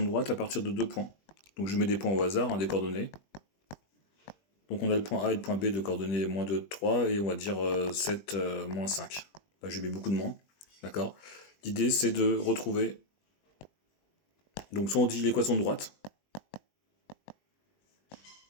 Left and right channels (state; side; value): late; right; 20 ms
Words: droite à partir de deux points. Donc, je mets des points au hasard, des coordonnées. Donc, on a le point A et le point B de coordonnées moins 2, 3, et on va dire 7, moins 5. Là, j'ai mis beaucoup de moins. D'accord. L'idée, c'est de retrouver. Donc, soit on dit l'équation de droite,